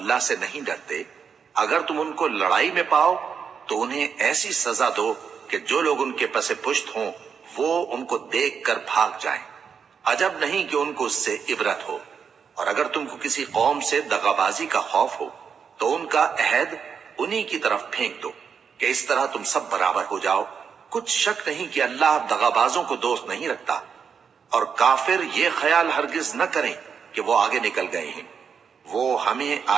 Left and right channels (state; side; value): quieter; left; 6.6 dB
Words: سے نہیں ڈرتے، اگر تم ان کو لڑائی میں پاؤ تو انہیں ایسی سزا دو کہ جو لوگ ان کے پس پشت ہوں وہ ان کو دیکھ کر بھاگ جائیں، عجب نہیں کہ ان کو اس سے عبرت ہو۔ اور اگر تم کو کسی قوم سے دغابازی کا خوف ہو تو ان کا عہد انہی کی طرف پھینک دو کہ اس طرح تم سب برابر ہو جاؤ، کچھ شک نہیں کہ اللہ دغابازوں کو دوست نہیں رکھتا۔ اور کافر یہ خیال ہرگز نہ کریں کہ وہ آگے نکل گئے ہیں، وہ ہمیں